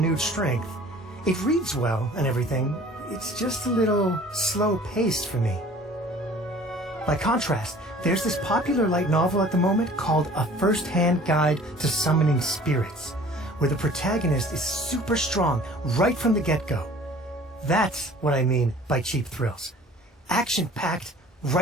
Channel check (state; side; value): normal; both; correlation 0.48